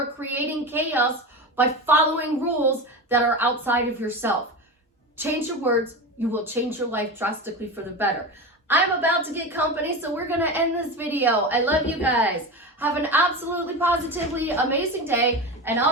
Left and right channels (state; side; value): normal; both; correlation 0.24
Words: creating chaos by following rules that are outside of yourself. Change your words, you will change your life drastically for the better. I'm about to get company, so we're going to end this video. I love you guys. Have an absolutely positively amazing day. And